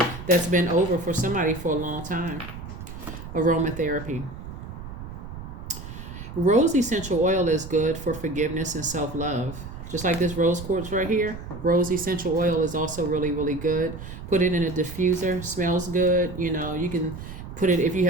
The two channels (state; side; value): noise; right; rumble, 11 dB below the sound